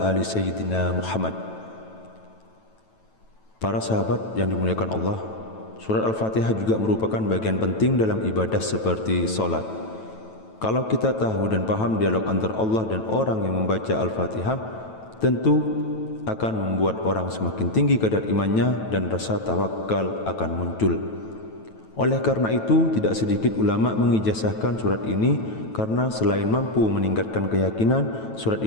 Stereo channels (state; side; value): late; right; 9.1 ms